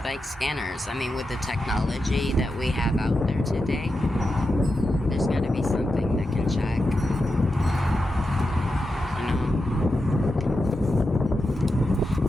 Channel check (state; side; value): normal; both; correlation 0.89